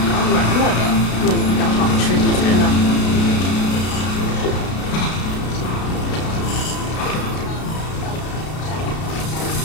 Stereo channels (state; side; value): late; right; 33 ms